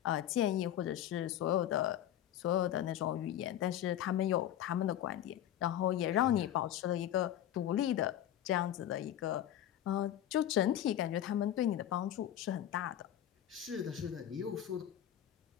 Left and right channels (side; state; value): right; quieter; 11.4 dB